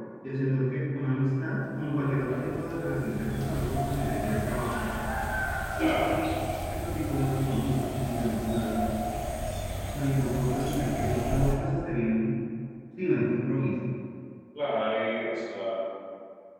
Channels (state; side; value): identical; both; correlation 1.00